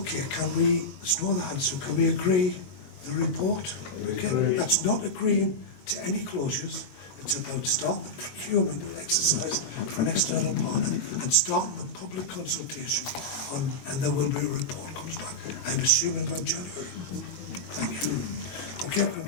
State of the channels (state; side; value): late; right; 22 ms